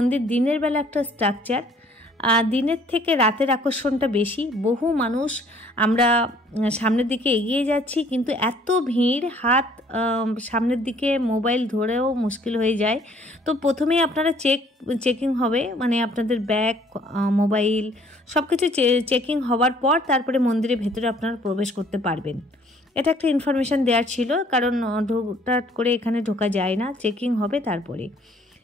দিনের বেলা একটা স্ট্রাকচার, দিনের থেকে রাতের আকর্ষণটা বেশি। বহু মানুষ, আমরা সামনের দিকে এগিয়ে যাচ্ছি কিন্তু এত ভিড়, হাত সামনের দিকে মোবাইল ধরেও মুশকিল হয়ে যায়। তো প্রথমেই আপনারা চেকিং হবে, মানে আপনাদের ব্যাগ, মোবাইল সব কিছু চেকিং হওয়ার পর তারপরে মন্দিরের ভেতরে আপনারা প্রবেশ করতে পারবেন। এটা একটা ইনফরমেশান দেওয়ার ছিল, কারণ হুটহাট করে এখানে ঢোকা যায় না, চেকিং হবে তারপরে।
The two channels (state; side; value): normal; both; correlation 0.59